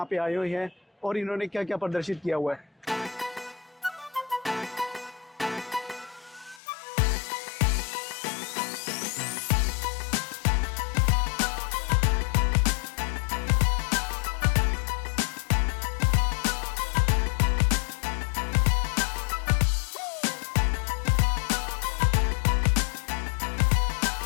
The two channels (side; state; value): right; drops out; at 6.6 s